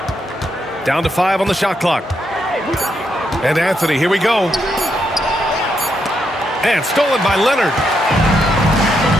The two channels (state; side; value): normal; both; correlation 0.80